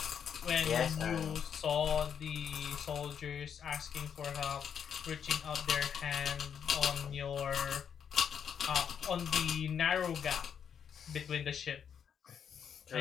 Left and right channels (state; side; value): quieter; right; 7.8 dB